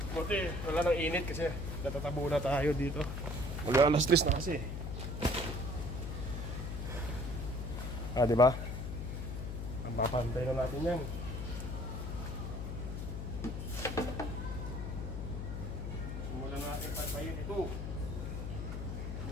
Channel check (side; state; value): left; noise; hum, 4 dB below the sound